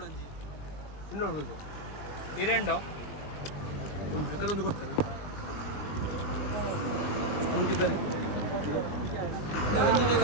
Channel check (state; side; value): late; right; 20 ms